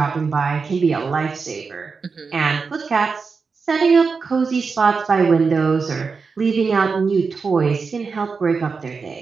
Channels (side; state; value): left; quieter; 4.9 dB